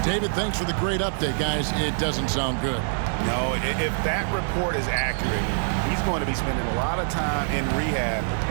David, thanks for the great update, guys. It doesn't sound good. No, if that report is accurate, he's going to be spending a lot of time in rehab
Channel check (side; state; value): left; silent; 61 dB below the other